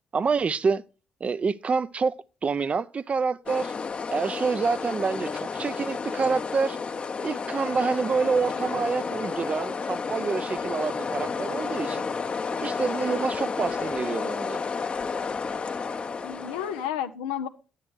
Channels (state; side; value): normal; both; correlation 0.81